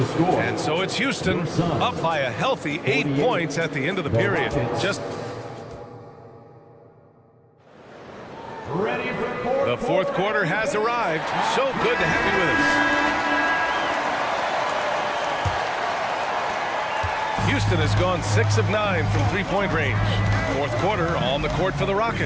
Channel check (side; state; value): both; identical; correlation 1.00